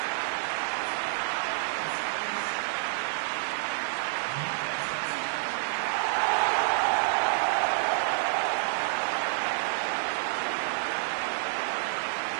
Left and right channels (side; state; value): left; silent; digital silence